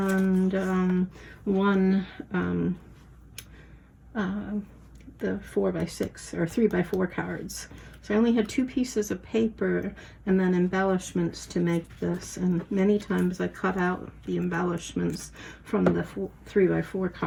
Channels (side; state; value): both; identical; correlation 1.00